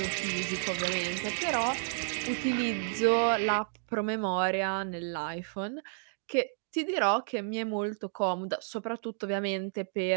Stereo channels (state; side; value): silent; left; digital silence